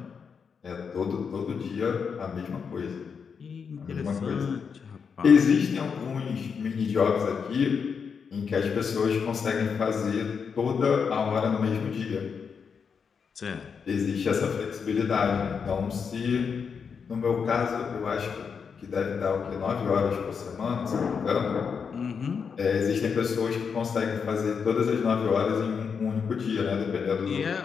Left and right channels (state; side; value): quieter; right; 6.2 dB